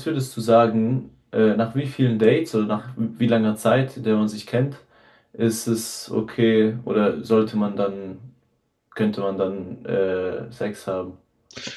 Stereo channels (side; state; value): both; identical; correlation 1.00